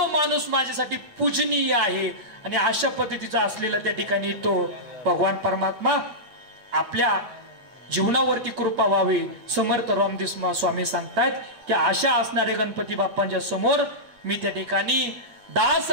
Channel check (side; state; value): left; late; 8.9 ms